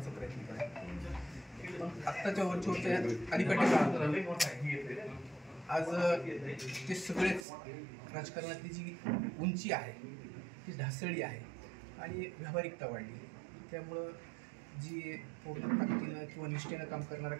प्रयत्न करतो. पण आत्ताच्या वरच्या अलीकडच्या काळात आज ते सगळेच राजकारणातली जी उंची आहे ती ढासळली आहे आणि व्यावहारिकता वाढली. त्यामुळं जी पूर्ण ताकदीनं किंवा निष्ठेनं काम करणारा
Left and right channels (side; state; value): left; drops out; at 7.5 s